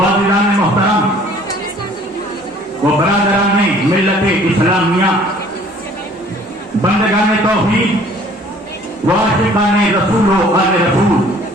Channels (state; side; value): normal; both; correlation 0.54